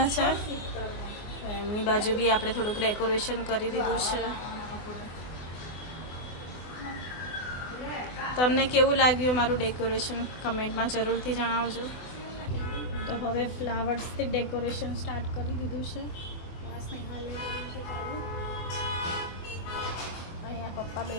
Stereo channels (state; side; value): late; right; 24 ms